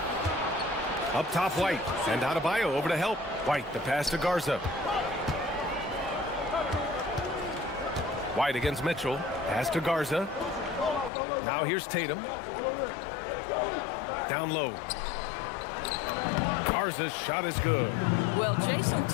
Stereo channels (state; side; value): drops out; right; at 11.1 s